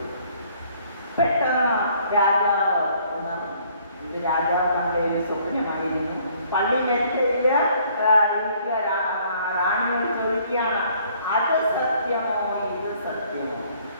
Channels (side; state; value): both; inverted; correlation -0.61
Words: പെട്ടെന്ന് രാജാവ് ഉണർന്നു. ഇത് രാജാവ് കണ്ട ഒരു സ്വപ്നമായിരുന്നു. പള്ളി മെത്തയില് റാണിയോട് ചോദിക്കുകയാണ്, അത് സത്യമോ ഇത് സത്യമോ?